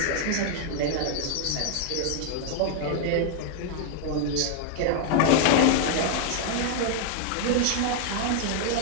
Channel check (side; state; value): both; different; correlation 0.00